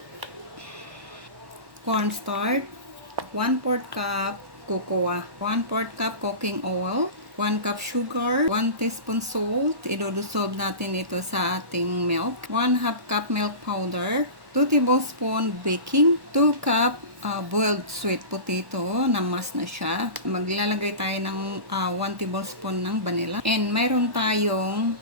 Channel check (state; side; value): late; left; 1.1 ms